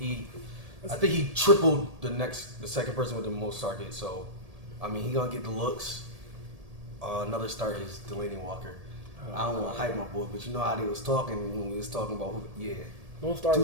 think he tripled the second person with the most targets. So, I mean, he gonna get the looks. Another start is Delaney Walker. I don't want to hype my boy, but you know how they was talking when we was talking about who? Yeah, Don't start 2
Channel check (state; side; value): late; left; 1.7 ms